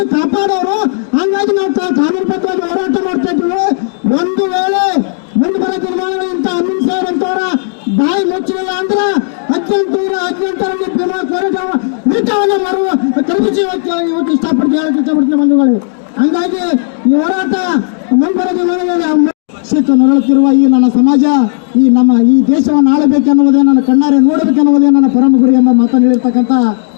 ಕಾಪಾಡೋರು, ಹಾಗಾಗಿ ನಾವು ಕಾನೂನುಬದ್ಧವಾಗಿ ಹೋರಾಟ ಮಾಡ್ತಾ ಇದ್ದೀವಿ. ಒಂದು ವೇಳೆ ಮುಂದೆ ಬರೋ ತೀರ್ಮಾನಗಳು ಇಂಥ ಅಮಿತ್ ಶಾ ಅಂತವರ ಬಾಯಿ ಮುಚ್ಚಲಿಲ್ಲ ಅಂದ್ರೆ 1818ರಲ್ಲಿ ಭೀಮಾ ಕೋರಿಟವನ್ನು ಮಾಡುವ ಕಲ್ಪಿಸಿ ಇವತ್ತು ಇಷ್ಟಪಡ್ತೀನಿ ಬಂಧುಗಳು. ಹಂಗಾಗಿ ಈ ಹೋರಾಟ ಮುಂದೆ ಬರೋ ತೀರ್ಮಾನಗಳಲ್ಲಿ ನರಳುತ್ತಿರುವ ಈ ನನ್ನ ಸಮಾಜ, ಈ ದೇಶವನ್ನು ಆಳಬೇಕೆನ್ನುವುದೇ, ನನ್ನ ಕಣ್ಣಾರೆ ನೋಡಬೇಕೆನ್ನುವುದೇ ನನ್ನ ಪರಮ ಗುರಿ ಎಂಬ ಮಾತನ್ನು ಹೇಳಿರ್ತಕ್ಕಂಥ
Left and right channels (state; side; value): silent; right; digital silence